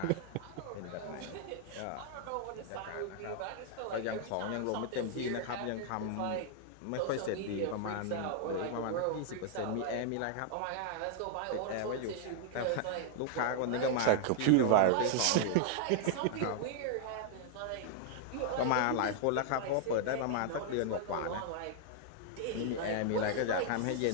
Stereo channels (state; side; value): different; both; correlation -0.01